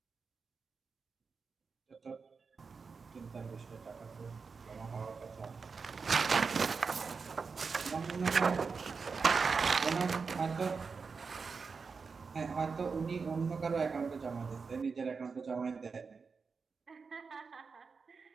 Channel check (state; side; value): quieter; left; 5.0 dB